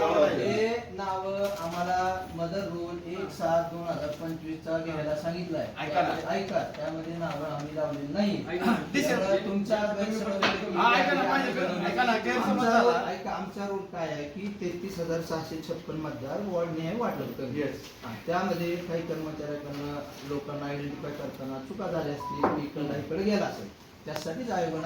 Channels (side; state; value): both; identical; correlation 1.00